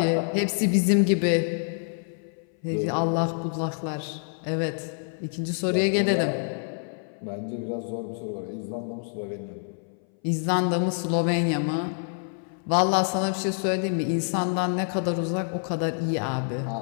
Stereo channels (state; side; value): silent; right; 59 dB below the other